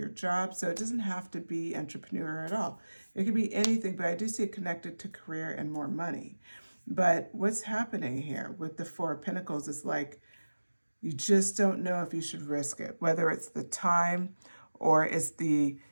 job. So it doesn't have to be entrepreneur at all. It could be anything, but I do see it connected to career and more money. But what's happening here with the Four of Pentacles is like, you just don't know if you should risk it, whether it's the time or it's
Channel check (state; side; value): inverted; both; correlation -1.00